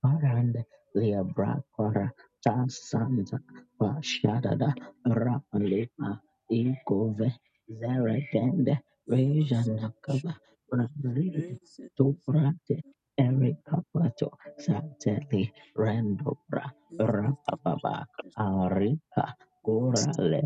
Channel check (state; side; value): identical; both; correlation 1.00